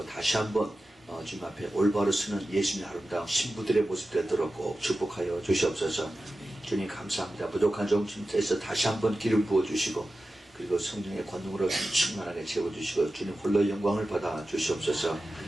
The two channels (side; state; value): both; normal; correlation 0.94